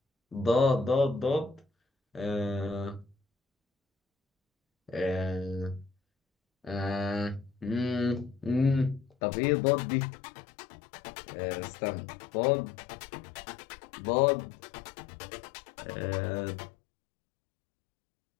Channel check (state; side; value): drops out; right; at 9.1 s